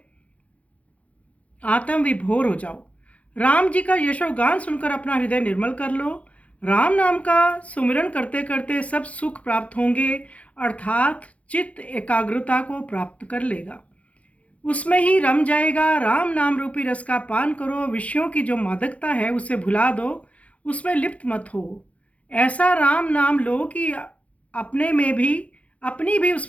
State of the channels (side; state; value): right; late; 0.065 ms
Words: आत्म विभोर हो जाओ। राम जी का यशोगान सुनकर अपना हृदय निर्मल कर लो। राम नाम का सुमिरन करते करते सब सुख प्राप्त होंगे, अर्थात चित्त एकाग्रता को प्राप्त कर लेगा, उसमें ही रम जाएगा। राम नाम रूपी रस का पान करो, विषयों की जो मादकता है उसे भुला दो, उसमें लिप्त मत हो। ऐसा राम नाम लो कि अपनी भी